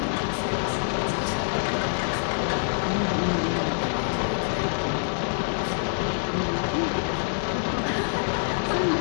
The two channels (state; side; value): silent; right; digital silence